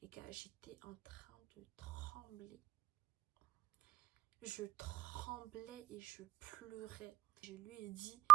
Les gars, j'étais en train de trembler. Je tremblais et je pleurais. Je lui ai dit,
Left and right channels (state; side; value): quieter; left; 16.1 dB